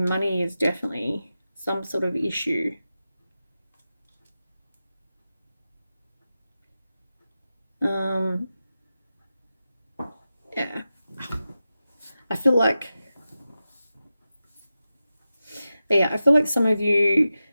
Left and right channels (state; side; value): inverted; both; correlation -0.92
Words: is definitely some sort of issue. Yeah. I feel like, yeah, I feel like some of you